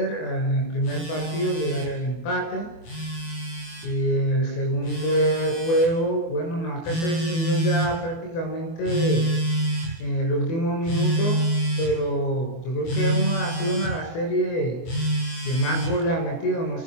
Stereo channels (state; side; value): late; right; 24 ms